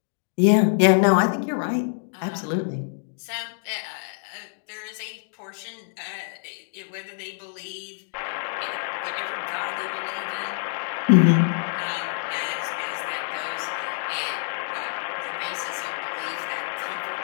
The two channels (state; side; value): silent; right; digital silence